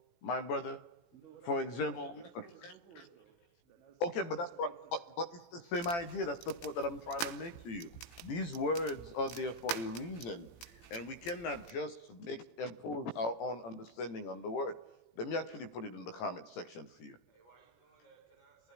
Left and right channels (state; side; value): late; right; 18 ms